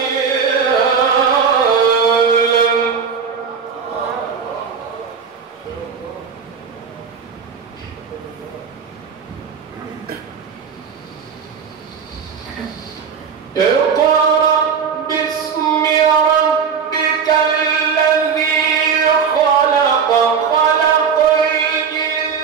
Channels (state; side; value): quieter; left; 6.4 dB